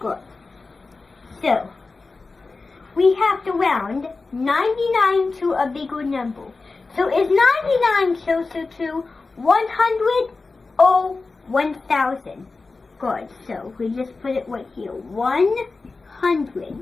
So, we have to round 99 to a bigger number. So is 99 closer to 100 or 1000? Good. So we just put it right here.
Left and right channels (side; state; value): right; quieter; 3.9 dB